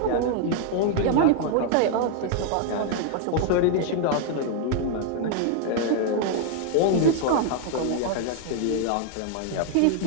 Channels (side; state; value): both; different; correlation 0.00